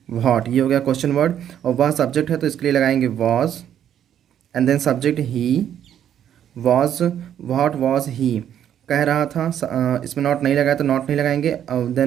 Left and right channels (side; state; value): left; quieter; 10.0 dB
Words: व्हाट, ये हो गया क्वेश्चन वर्ड। और वह सब्जेक्ट है तो इसके लिए लगाएंगे was, and then subject he, was, what was he, कह रहा था, इसमें नॉट नहीं लगाया तो नॉट नहीं लगाएंगे।